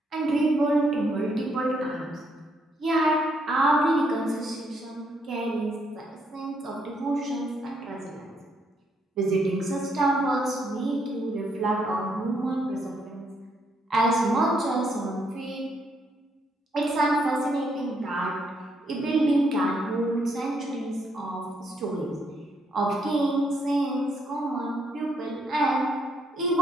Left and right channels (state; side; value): normal; both; correlation 0.73